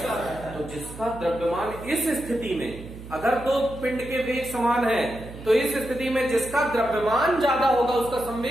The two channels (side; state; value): right; noise; hum, 14 dB below the sound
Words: तो जिसका द्रव्यमान इस स्थिति में, अगर दो पिंड के वेग समान है तो इस स्थिति में जिसका द्रव्यमान ज्यादा होगा उसका